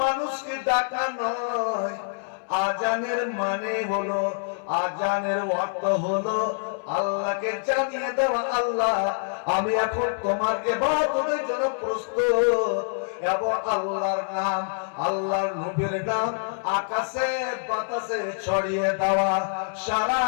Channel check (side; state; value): right; silent; 61 dB below the other